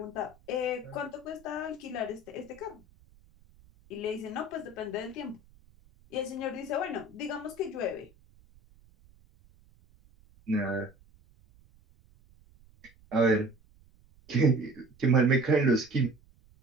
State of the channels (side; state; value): right; noise; rumble, 28 dB below the sound